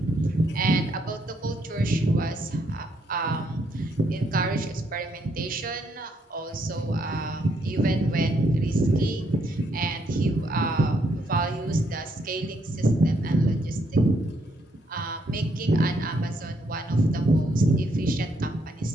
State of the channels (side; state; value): both; normal; correlation 0.74